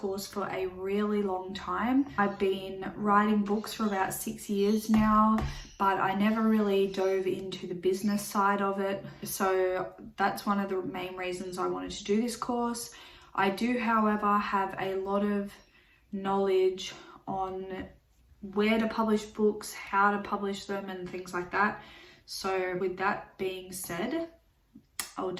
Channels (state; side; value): identical; both; correlation 1.00